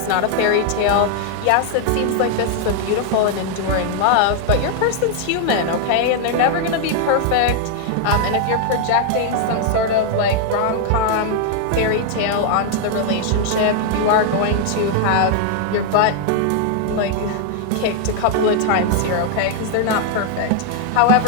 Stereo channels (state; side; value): different; both; correlation 0.00